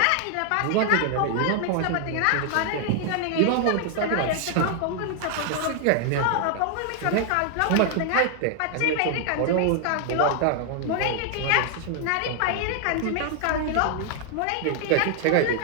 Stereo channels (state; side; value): different; both; correlation 0.00